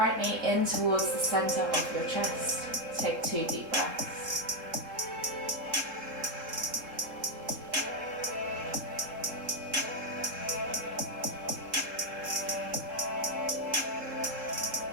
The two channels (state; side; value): late; left; 3.7 ms